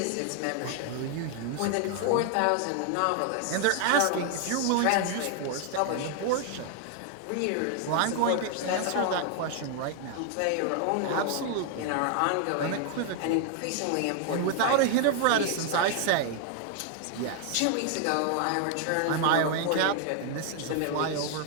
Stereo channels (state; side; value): different; both; correlation 0.00